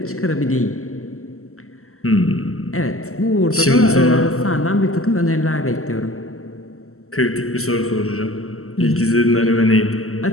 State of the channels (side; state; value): right; late; 0.63 ms